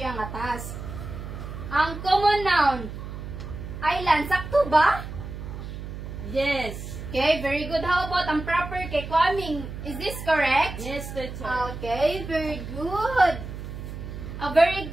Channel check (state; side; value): noise; right; hum, 9 dB below the sound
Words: nga task. Ang common noun, island, sakto ba? Yes. Okay, very good. How about ang proper kay Kwaming? Is this correct? Yes, teacher. Okay, very good. A very